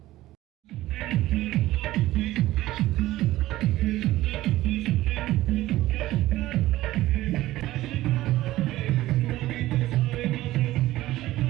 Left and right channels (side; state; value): left; quieter; 16.1 dB